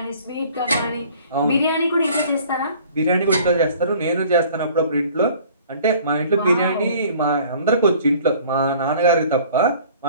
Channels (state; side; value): inverted; both; correlation -0.51